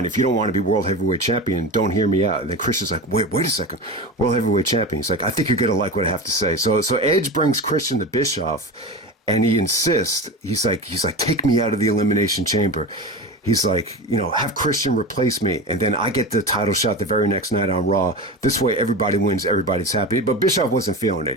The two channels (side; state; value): both; normal; correlation 0.26